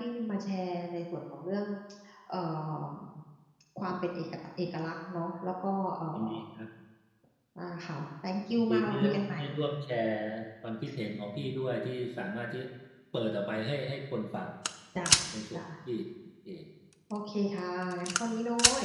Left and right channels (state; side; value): identical; both; correlation 1.00